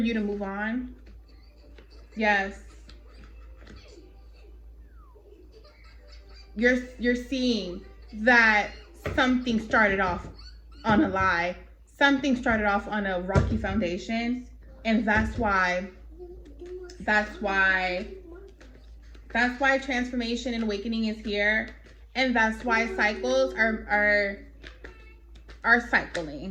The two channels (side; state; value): both; identical; correlation 1.00